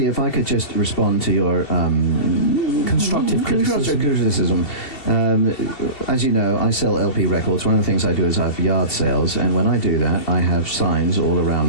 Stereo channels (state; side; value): late; right; 2.7 ms